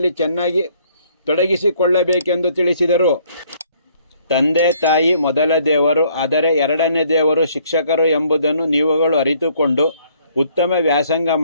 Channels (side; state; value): both; inverted; correlation -0.64